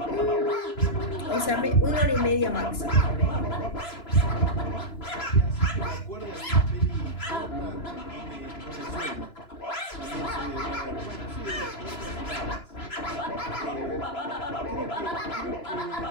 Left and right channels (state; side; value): late; right; 2.9 ms